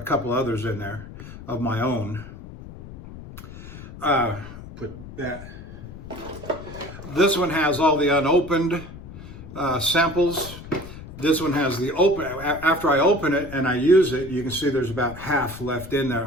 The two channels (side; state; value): left; noise; rumble, 14 dB below the sound